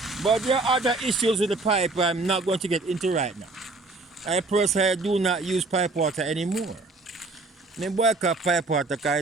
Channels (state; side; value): quieter; left; 3.4 dB